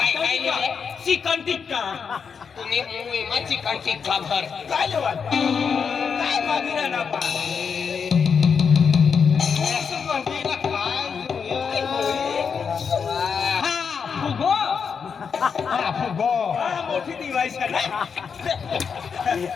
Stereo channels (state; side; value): quieter; right; 6.2 dB